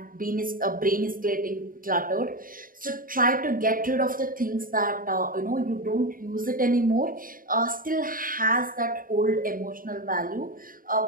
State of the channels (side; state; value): left; late; 0.41 ms